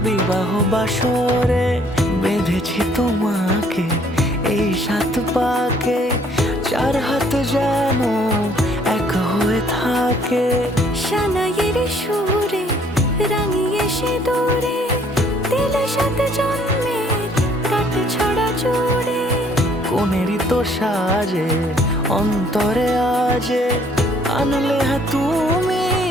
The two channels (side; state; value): both; normal; correlation 0.62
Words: বিবাহ বাসরে। বেঁধেছি তোমাকে এই 7 পাকে, 4 হাত যেন এক হয়ে থাকে। সানাইয়ের সুরে রাঙিয়ে সে দূরে, দিলে 7 জন্মের কাট ছড়া জোড়ে। কোনেরই তো সাজে অন্তরে আজে, আনলে হ্যাঁ তুমি